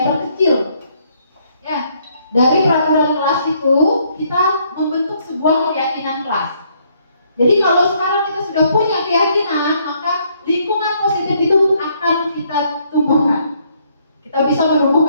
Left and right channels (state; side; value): inverted; both; correlation -0.69